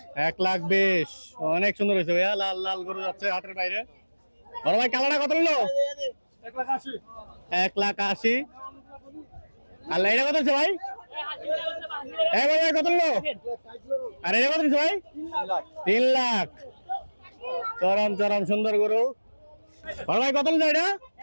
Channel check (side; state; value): both; inverted; correlation -1.00